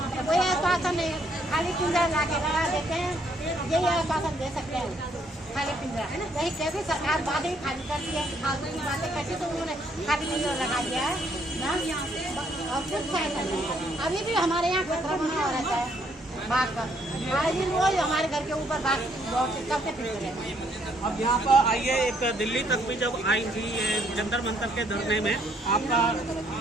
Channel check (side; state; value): both; normal; correlation 0.69